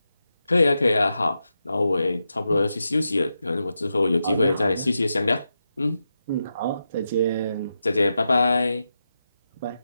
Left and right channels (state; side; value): inverted; both; correlation -0.88